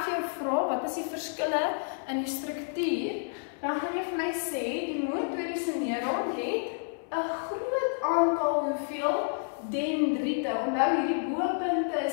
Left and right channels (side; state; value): right; silent; 58 dB below the other